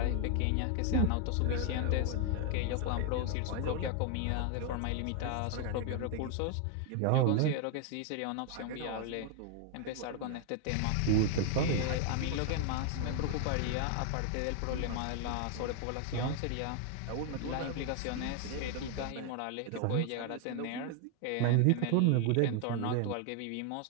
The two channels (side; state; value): both; different; correlation 0.00